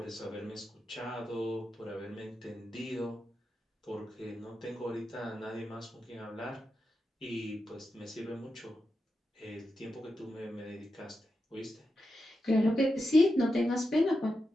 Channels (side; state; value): both; normal; correlation 0.88